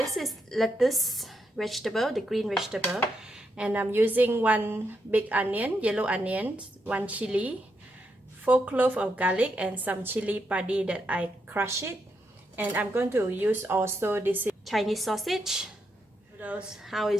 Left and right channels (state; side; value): normal; both; correlation 0.81